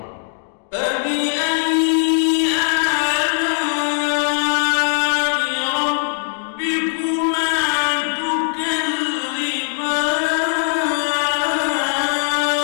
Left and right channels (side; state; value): right; silent; digital silence